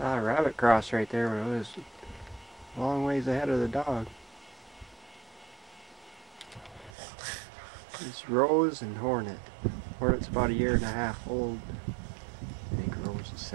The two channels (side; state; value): left; drops out; at 7.0 s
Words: a rabbit cross right there, but it was a long ways ahead of the dog. It's Rose and Hornet. Hornet's about 1.5 years old. I think Rose is